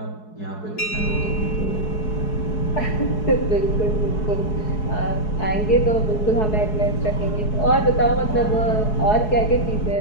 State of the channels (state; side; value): late; right; 4.7 ms